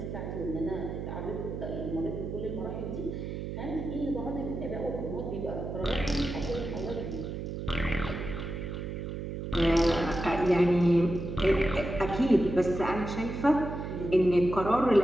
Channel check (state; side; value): noise; right; hum, 6 dB below the sound